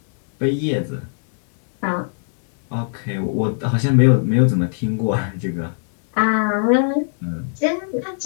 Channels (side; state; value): right; silent; digital silence